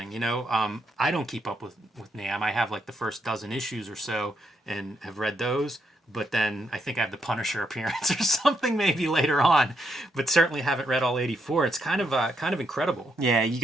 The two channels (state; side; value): normal; both; correlation 0.79